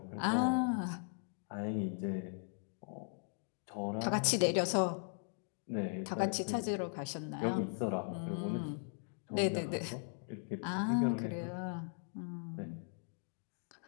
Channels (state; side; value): silent; right; 52 dB below the other